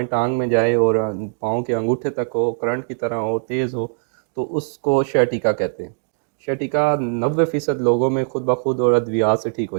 टांग में जाए और पाँव के अंगूठे तक हो, करंट की तरह हो, तेज़ हो, तो उसको शर्टिका कहते हैं। शर्टिका 90% लोगों में खुद ब खुद और अद्वियात से ठीक हो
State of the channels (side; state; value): left; silent; digital silence